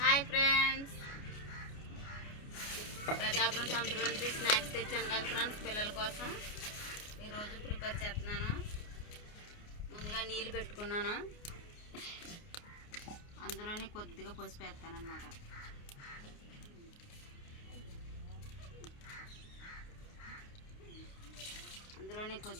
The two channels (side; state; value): right; late; 29 ms